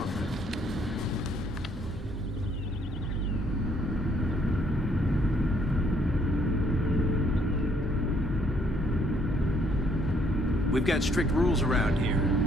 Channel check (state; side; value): normal; both; correlation 0.67